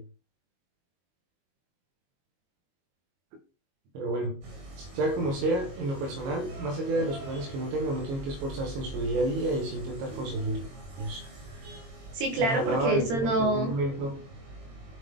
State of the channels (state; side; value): late; left; 22 ms